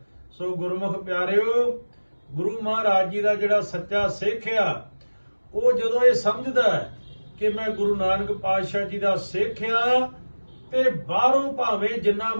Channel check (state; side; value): inverted; both; correlation -1.00